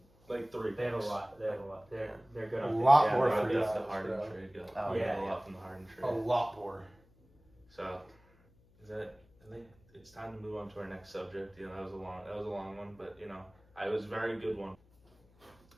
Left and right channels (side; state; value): left; noise; hum, 29 dB below the sound